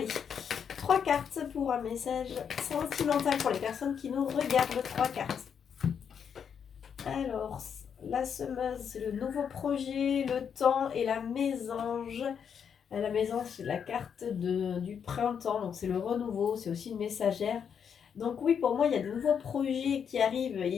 3 cartes pour un message sentimental pour les personnes qui nous regardent. 3 cartes. Alors, la semeuse, c'est le nouveau projet, le temps et la mésange. La mésange, c'est la carte du printemps, donc c'est le renouveau, c'est aussi une messagère. Donc oui, pour moi, il y a de nouveaux projets qui arrivent.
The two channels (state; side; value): quieter; right; 7.4 dB